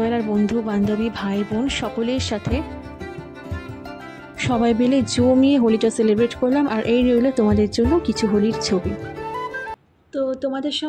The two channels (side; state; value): both; identical; correlation 1.00